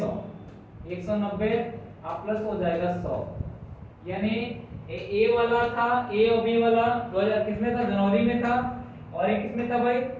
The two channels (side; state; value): both; identical; correlation 1.00